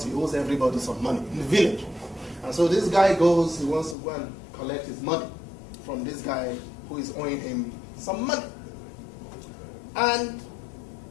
he owes everybody some money in the village. And so this guy goes, he wants to go and collect his money from this guy who is owing him some money. And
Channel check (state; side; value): drops out; right; at 4.0 s